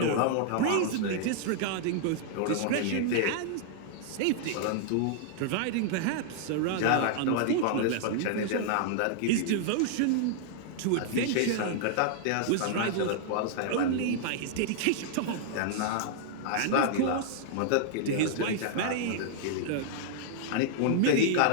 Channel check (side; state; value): both; different; correlation -0.01